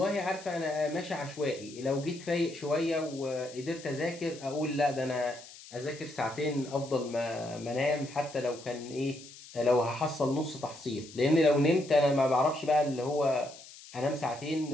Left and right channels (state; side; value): noise; left; hiss, 18 dB below the sound